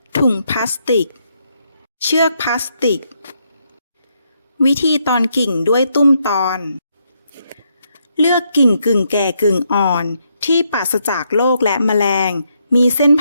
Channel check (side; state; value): both; inverted; correlation -0.77